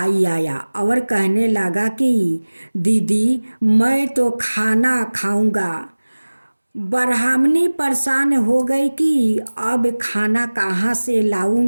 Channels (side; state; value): both; inverted; correlation -1.00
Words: आया और कहने लगा कि दीदी मैं तो खाना खाऊंगा, ब्राह्मणी परेशान हो गई कि अब खाना कहाँ से